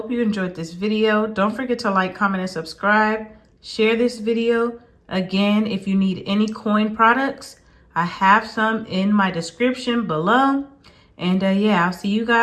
you enjoyed this video. Don't forget to like, comment, and subscribe. Share this video. Again, if you need any coin products, I have some in my description below. And yeah, I'll see you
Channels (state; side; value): identical; both; correlation 1.00